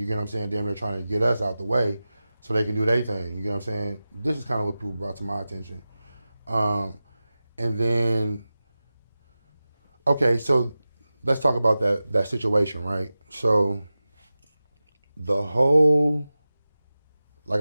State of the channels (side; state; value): both; inverted; correlation -0.95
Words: get what I'm saying? Damn, they're trying to get us out the way so they can do their thing. You get what I'm saying? This is kind of what people brought to my attention. And then, okay, so let's talk about that situation, right? So the whole, like